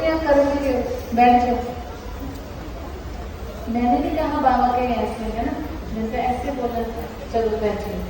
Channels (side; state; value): both; identical; correlation 1.00